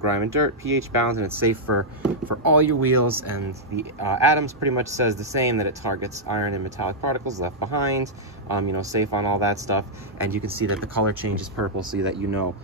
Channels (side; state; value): both; normal; correlation -0.07